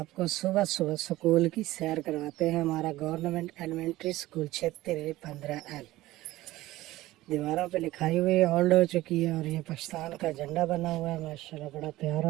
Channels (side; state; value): left; quieter; 17.1 dB